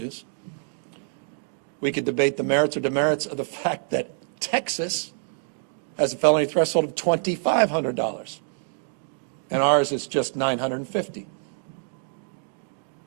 We could debate the merits or demerits of the fact that Texas has a felony threshold of $2,500, and ours is just $950.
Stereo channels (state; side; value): silent; left; 61 dB below the other